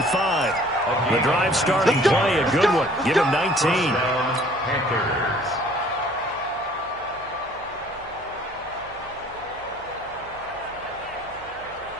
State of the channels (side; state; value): right; noise; hum, 23 dB below the sound